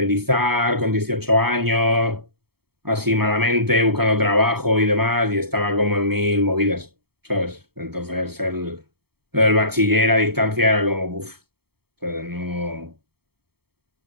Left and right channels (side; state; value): left; late; 0.96 ms